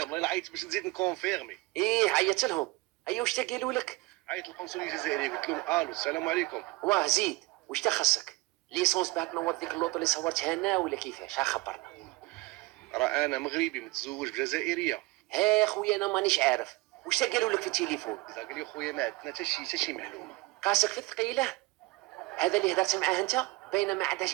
والله عيطت باش نزيد نكونفيرمي. ايه عيطت لهم؟ ايوا واش قالوا لك؟ عيطت للقنصليه الجزائريه قلت لهم الو السلام عليكم. واه زيد واش تخصك؟ ليسونس باه تنور ديك اللوطو اللي صورتها انا ولا كيفاش؟ ها خبرنا. راه انا مغربي متزوج بجزائريه. ها خويا انا مانيش عارف واش قالوا لك في التليفون. قال لي خويا ما عندنا حتى شي معلومه. قاسك في الثقيله هذا اللي هدرت معاه انت، باينه ما عندهاش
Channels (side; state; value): left; quieter; 23.1 dB